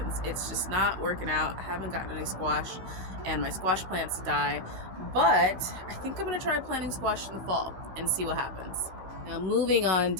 It's just not working out. I haven't gotten any squash, and my squash plants die. But I think I'm going to try planting squash in the fall and see what happens. Now moving on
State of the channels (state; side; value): late; left; 15 ms